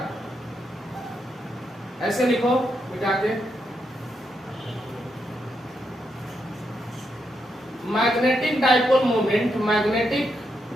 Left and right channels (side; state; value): both; normal; correlation 0.81